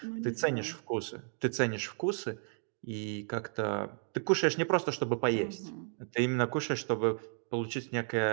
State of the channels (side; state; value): left; silent; 56 dB below the other